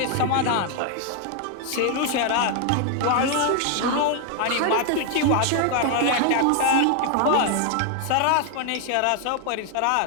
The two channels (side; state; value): both; different; correlation 0.00